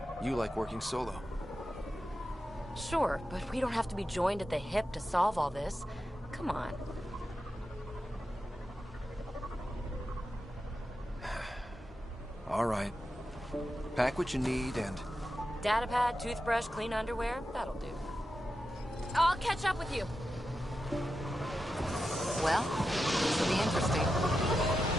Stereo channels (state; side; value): normal; both; correlation 0.90